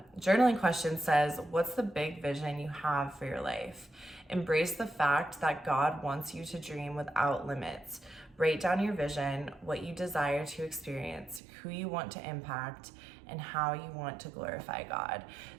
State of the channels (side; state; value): left; drops out; at 11.4 s